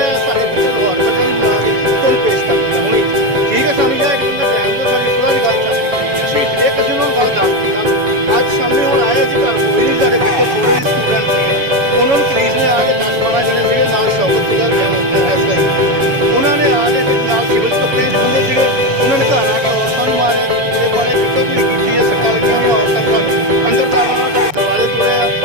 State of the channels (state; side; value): late; left; 7.0 ms